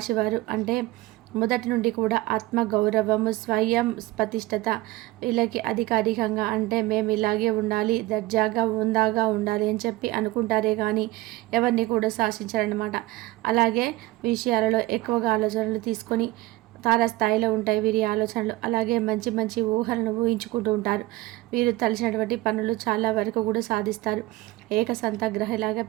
అంటే మొదటి నుండి కూడా ఆత్మగౌరవము, స్వయం ప్రతిష్టత వీళ్ళకి అధికారికంగా అంటే మేము ఇలాగే ఉండాలి, దర్జాగా ఉందాగా ఉండాలి అని చెప్పి అనుకుంటారే కానీ ఎవరిని కూడా శాసించారనమాట. అలాగే విషయాలలో ఎక్కువగా ఆలోచనలు తీసుకొని తారాస్థాయిలో ఉంటాయి వీరి ఆలోచనలు. అలాగే మంచి మంచి ఊహలను ఊహించుకుంటూ ఉంటారు. వీరు తలచినటువంటి పనులు చాలా వరకు కూడా సాధిస్తారు. ఏకసంతగ్రహలాగా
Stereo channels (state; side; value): quieter; left; 18.6 dB